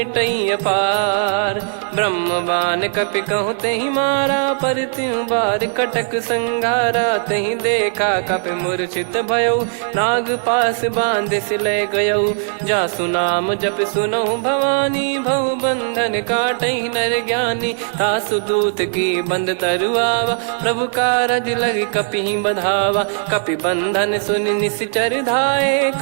अपार। ब्रह्म बान कपि कहु तहि मारा, पर त्यों बार कटक संगारा। तहि देखा कपि मूर्छित भयउ, नाग पास बांध सिले गयउ। जासु नाम जप सुनहु भवानी, भव बंधन काटहि नर ज्ञानी। तासु दूत की बंद तरुआवा, प्रभु कारज लग कपि बधावा। कपि बंधन सुनि निश्चर धाये,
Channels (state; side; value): silent; left; 59 dB below the other